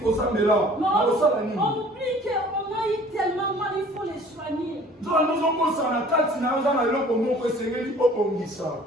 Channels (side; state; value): both; normal; correlation 0.50